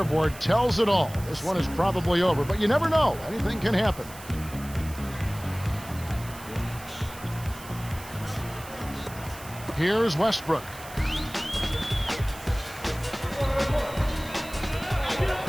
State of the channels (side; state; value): right; noise; hiss, 17 dB below the sound